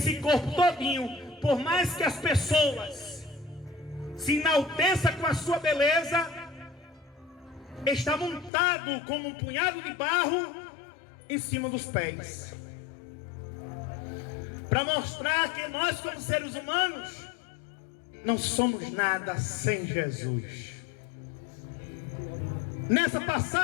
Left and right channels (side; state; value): right; drops out; at 8.5 s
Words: corpo todinho, por mais que as pessoas se enalteçam com a sua beleza, está montado como um punhado de barro em cima dos pés, para mostrar que nós, como seres humanos, não somos nada sem Jesus. Nessa